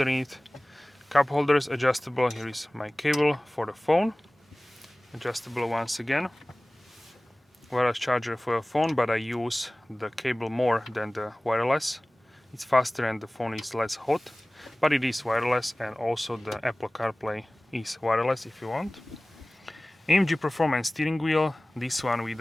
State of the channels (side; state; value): both; normal; correlation 0.98